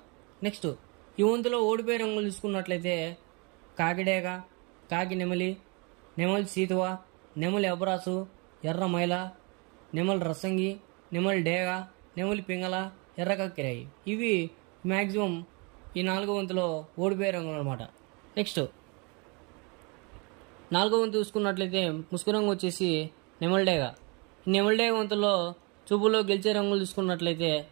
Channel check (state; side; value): quieter; left; 31.0 dB